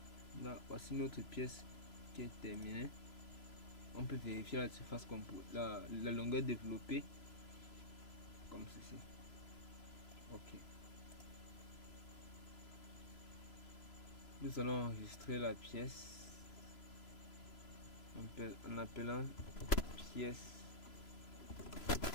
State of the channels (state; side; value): late; right; 3.0 ms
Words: Là, voici notre pièce qui est terminée. On peut vérifier la surface la longueur développée comme ceci. Ok. Nous allons enregistrer la pièce en appelant pièce